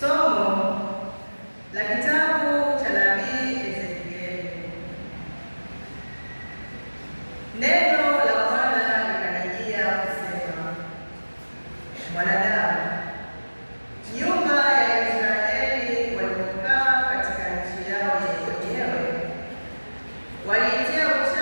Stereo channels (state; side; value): inverted; both; correlation -1.00